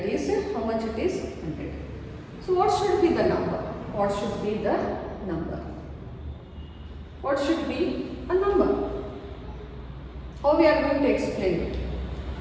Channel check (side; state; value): both; identical; correlation 1.00